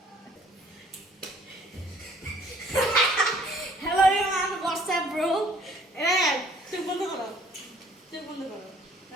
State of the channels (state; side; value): normal; both; correlation 0.58